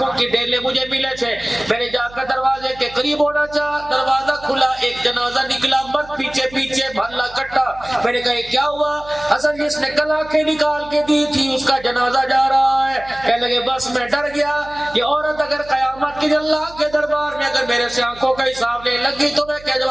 کی ڈیلے مجھے ملے تھے. میں نے جا کر دروازے کے قریب ہونا چاہا، دروازہ کھلا، ایک جنازہ نکلا، مرد پیچھے پیچھے بھلا کٹا. میں نے کہا یہ کیا ہوا؟ حسن جس نے کل آنکھیں نکال کے دی تھی اس کا جنازہ جا رہا ہے. کہنے لگے بس میں ڈر گیا، یہ عورت اگر قیامت کے اللہ کے دربار میں اگر میرے سے آنکھوں کا حساب لے لگی تو میں کیا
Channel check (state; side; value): noise; right; hum, 20 dB below the sound